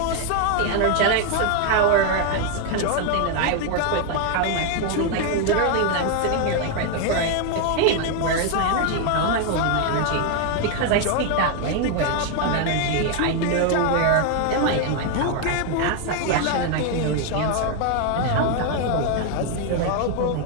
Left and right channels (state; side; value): different; both; correlation 0.01